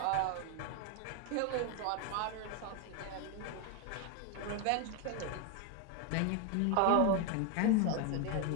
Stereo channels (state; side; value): different; both; correlation 0.01